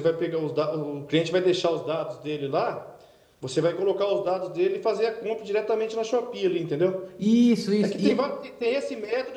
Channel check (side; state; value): both; identical; correlation 1.00